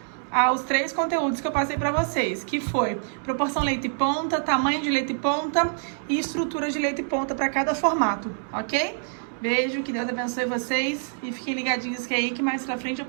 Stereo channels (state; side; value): silent; left; digital silence